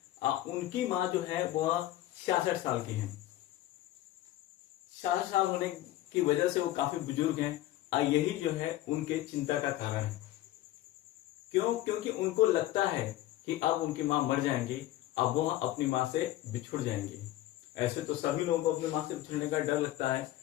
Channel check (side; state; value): right; quieter; 14.9 dB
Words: उनकी माँ जो है वह 66 साल की है। 66 साल होने की वजह से वो काफी बुजुर्ग हैं। यही जो है उनके चिंता का कारण है। क्यों? क्योंकि उनको लगता है कि अब उनकी माँ मर जाएंगी, अब वो अपनी माँ से बिछुड़ जाएंगी। ऐसे तो सभी लोगों को अपनी माँ से बिछुड़ने का डर लगता है,